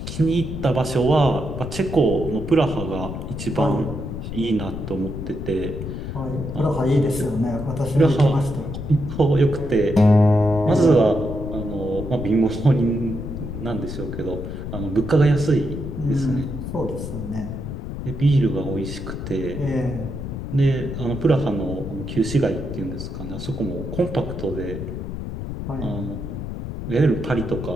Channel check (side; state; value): left; noise; rumble, 7 dB below the sound